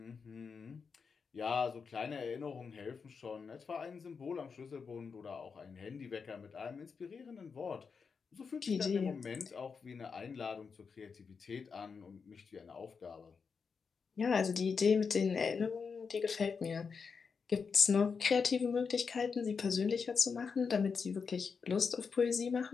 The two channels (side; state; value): right; quieter; 5.6 dB